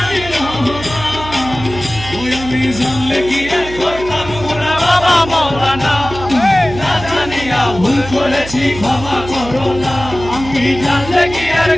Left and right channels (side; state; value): right; noise; hum, 12 dB below the sound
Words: জানলে কি আর করতাম গুনাহ বাবা মাওলানা, না জানিয়া ভুল করেছি ক্ষমা করো না। আমি জানলে কি আর